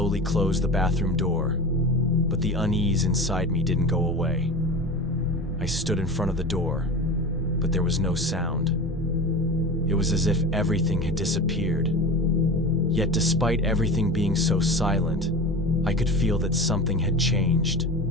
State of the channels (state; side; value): normal; both; correlation 0.31